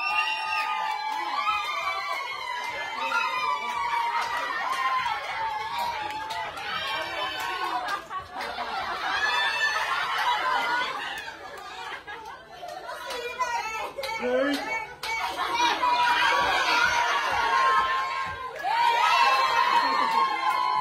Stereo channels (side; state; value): both; identical; correlation 1.00